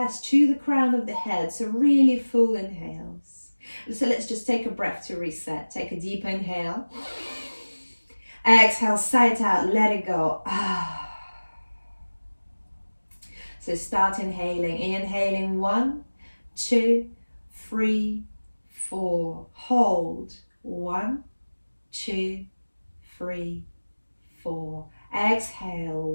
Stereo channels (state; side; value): inverted; both; correlation -1.00